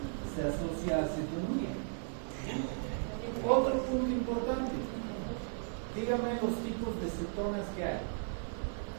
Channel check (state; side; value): silent; left; digital silence